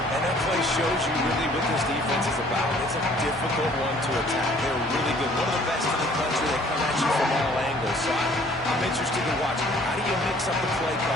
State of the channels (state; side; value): normal; both; correlation 0.57